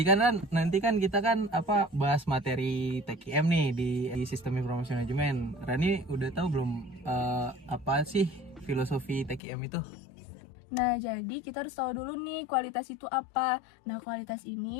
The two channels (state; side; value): drops out; right; at 9.4 s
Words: kan nanti kan kita kan bahas materi TKM nih di Sistem Informasi Manajemen. Rani udah tahu belum apa sih filosofi TKM itu? Nah, jadi kita harus tahu dulu nih kualitas itu apa. Nah, kualitas